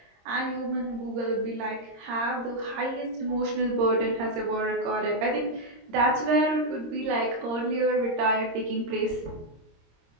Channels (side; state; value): left; late; 26 ms